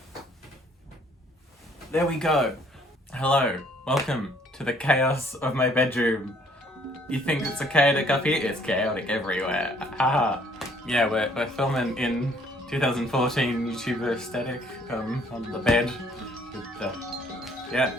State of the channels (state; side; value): normal; both; correlation 0.62